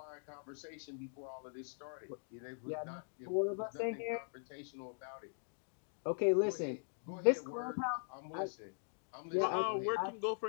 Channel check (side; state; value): right; silent; digital silence